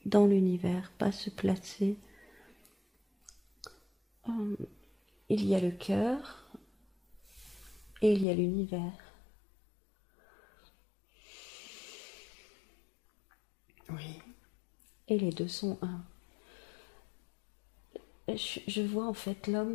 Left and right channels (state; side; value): drops out; right; at 8.2 s